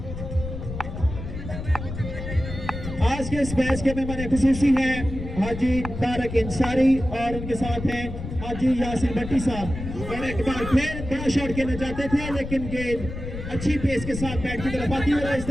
आज के इस मैच के मेहमान खुसूसी हैं हाजी तारक अंसारी और उनके साथ हैं हाजी यासिन भट्टी साहब। और एक बार फिर बड़ा शॉट खेलना चाहते थे लेकिन गेंद अच्छी पेस के साथ बैट की तरफ आती है। इस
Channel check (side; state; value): left; noise; rumble, 8 dB below the sound